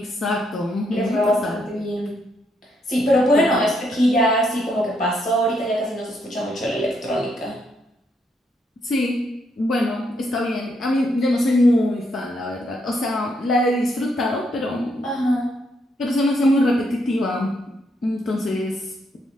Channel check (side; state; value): both; normal; correlation 0.76